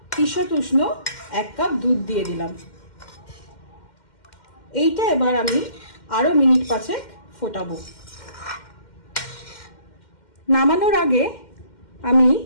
ঈষৎ উষ্ণ 1 কাপ দুধ দিয়ে দিলাম। এইটা এবার আমি আরো মিনিট 5 ফোটাবো। নামানোর আগে আমি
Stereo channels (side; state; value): right; late; 2.1 ms